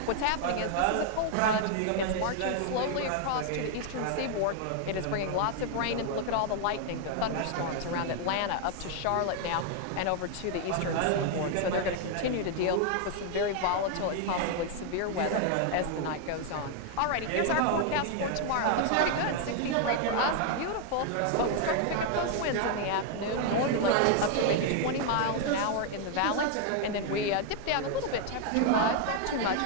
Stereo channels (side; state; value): both; different; correlation 0.00